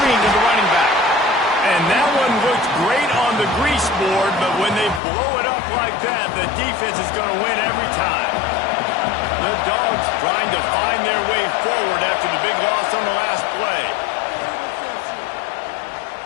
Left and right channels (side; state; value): right; drops out; at 5.0 s